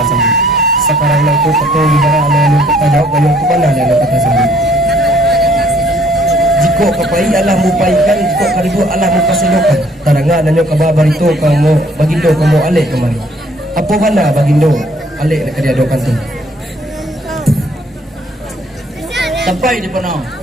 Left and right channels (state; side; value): normal; both; correlation 0.61